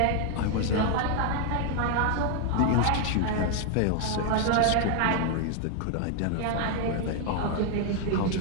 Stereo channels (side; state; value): both; different; correlation 0.00